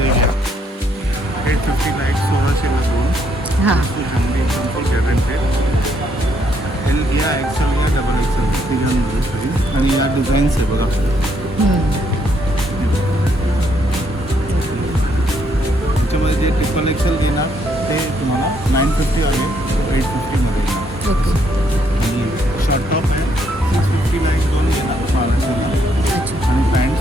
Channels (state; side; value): normal; both; correlation 0.72